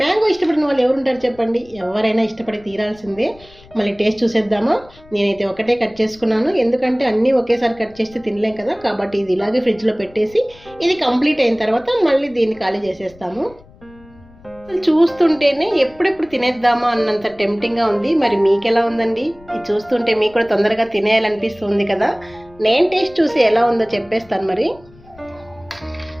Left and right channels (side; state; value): left; noise; rumble, 25 dB below the sound